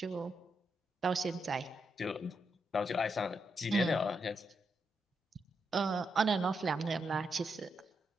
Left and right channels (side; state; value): both; normal; correlation 0.83